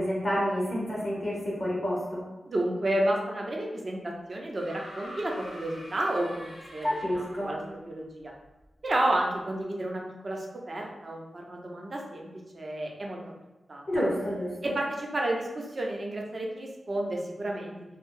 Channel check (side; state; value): both; normal; correlation 0.93